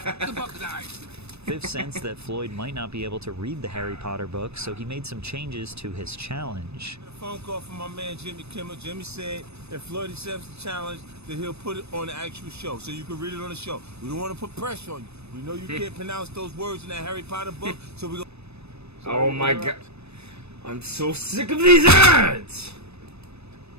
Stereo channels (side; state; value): left; late; 0.80 ms